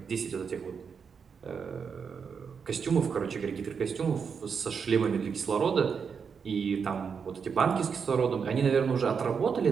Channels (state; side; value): quieter; left; 6.2 dB